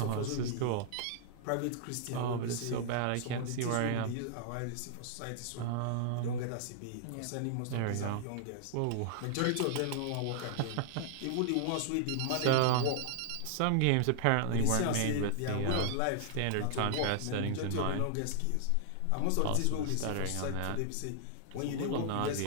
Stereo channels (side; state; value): both; different; correlation -0.01